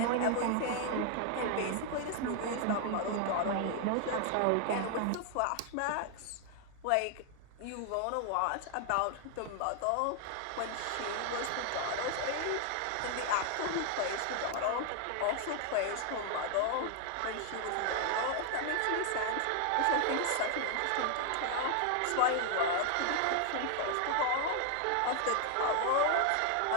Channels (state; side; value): different; both; correlation 0.00